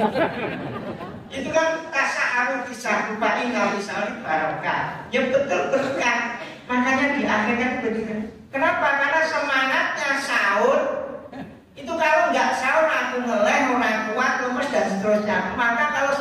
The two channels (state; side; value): identical; both; correlation 1.00